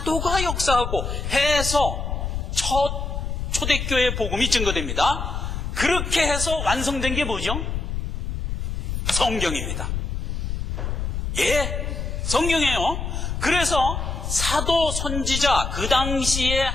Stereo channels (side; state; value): left; noise; rumble, 3 dB below the sound